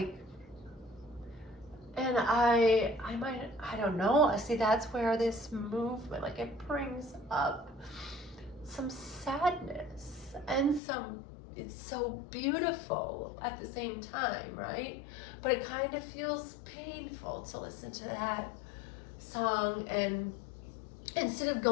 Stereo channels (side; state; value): right; drops out; at 10.8 s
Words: And I don't know, see, that's where this movement, like, it brings up some sadness and it's so beautiful at the same time, right? But it kind of feels painful to listen to that song, and instead of